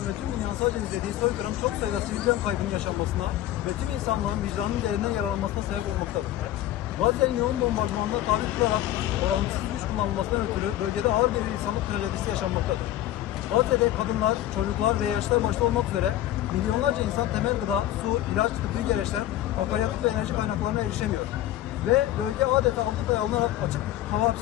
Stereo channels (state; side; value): quieter; right; 13.5 dB